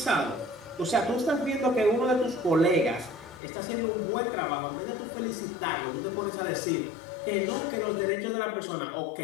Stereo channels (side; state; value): right; drops out; at 3.4 s